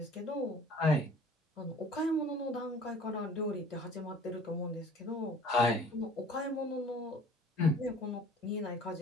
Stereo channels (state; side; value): normal; both; correlation 0.49